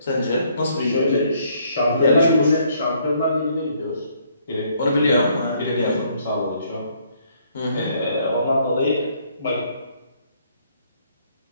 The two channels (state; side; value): inverted; both; correlation -0.67